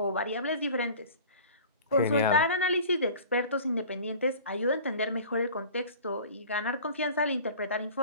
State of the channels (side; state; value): both; inverted; correlation -0.42